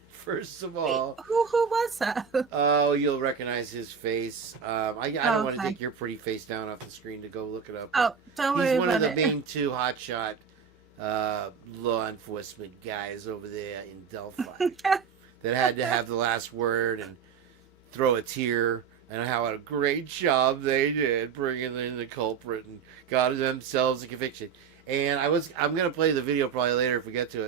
First of all. Wait, who was that? Oh, you'll recognize his face. I don't want to Okay. take your pretty face down off the screen to go look it up. Oh, don't worry He's one of about the it. main two hotshot law enforcement guys over there in Delphi that had to have the last word and throw a tear, and how a great job they did bringing in the culprit and got themselves a conviction. And I'm going to play the video probably later if we get to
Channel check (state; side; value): quieter; left; 6.7 dB